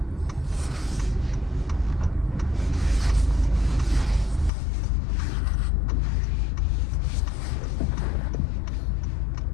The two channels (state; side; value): drops out; right; at 4.5 s